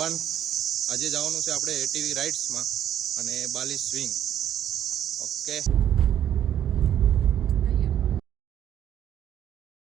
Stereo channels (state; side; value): quieter; left; 10.6 dB